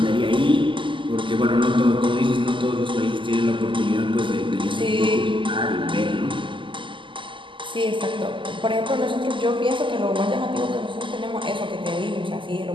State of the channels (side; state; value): left; late; 0.25 ms